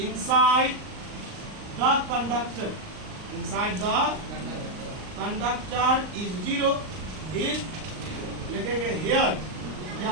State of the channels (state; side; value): late; left; 39 ms